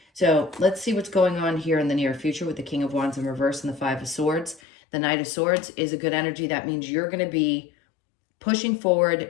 So let's see what's going on here in the near future with the King of Wands in reverse and the Five of Swords. The Knight of Swords is a good energy. That means you're going to be pushing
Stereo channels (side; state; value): right; drops out; at 4.6 s